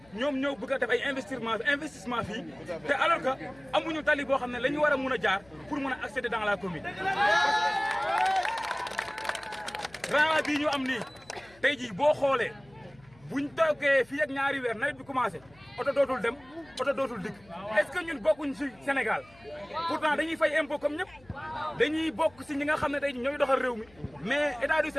ñoom ñoo bëgg a def ay investissement fii te alors que amuñu tali boo xam ne la ñu war a mun a jaar pour mun a accéder dans la commune. rang bii ñu am nii tey jii boo xoolee buñ toogee fii ak ñaari weer nawet bi commencé oto dootul dem oto dootul dikk est-ce que ñun bokkuñ ci Sénégal pourtant dañuy fay impôt comme ñëpp dañuy bokk ci ñi nga xam ne tey ñooy doxal réew mi mais état du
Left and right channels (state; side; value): noise; left; hum, 27 dB below the sound